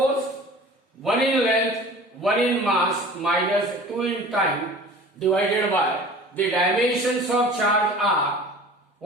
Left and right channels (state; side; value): normal; both; correlation 0.42